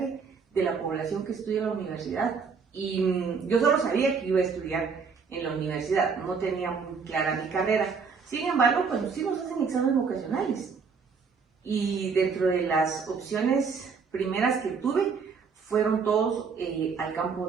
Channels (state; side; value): quieter; left; 5.5 dB